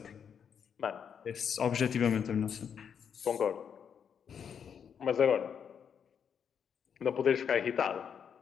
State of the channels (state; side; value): quieter; right; 7.5 dB